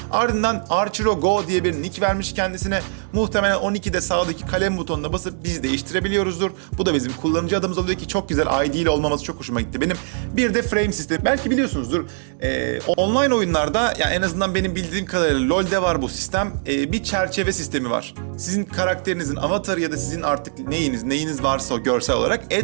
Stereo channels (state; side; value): silent; left; digital silence